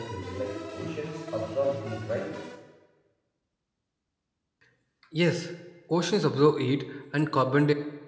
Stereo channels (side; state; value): both; identical; correlation 1.00